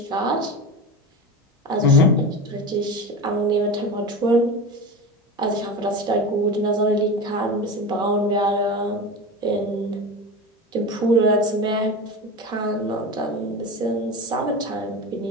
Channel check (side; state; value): both; normal; correlation 0.26